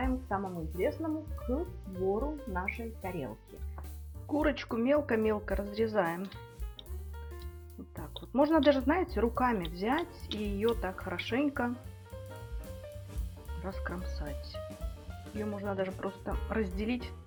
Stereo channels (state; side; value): identical; both; correlation 1.00